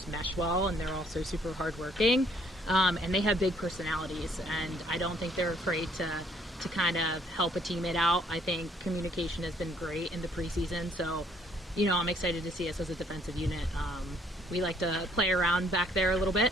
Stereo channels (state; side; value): normal; both; correlation 0.65